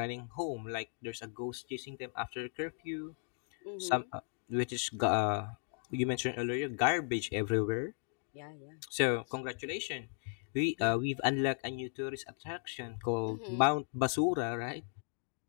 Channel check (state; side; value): silent; right; 54 dB below the other